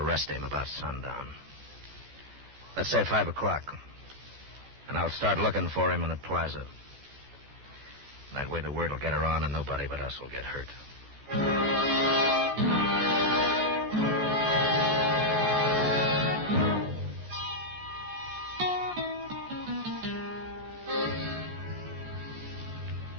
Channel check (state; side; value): late; left; 14 ms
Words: him about sundown. Let's say 5 o'clock. And I'll start looking for him in the plaza. That way the word will get around and nobody but us will get hurt.